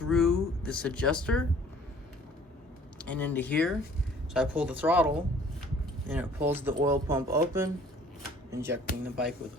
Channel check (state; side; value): normal; both; correlation 0.54